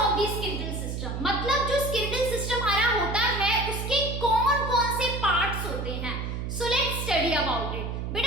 of the skeletal system. मतलब जो स्केलेटल सिस्टम हमारा होता है उसके कौन-कौन से पार्ट्स होते हैं। So let's study about it.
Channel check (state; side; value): noise; right; hum, 4 dB below the sound